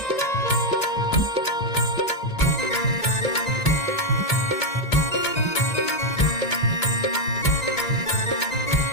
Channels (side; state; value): right; late; 1.9 ms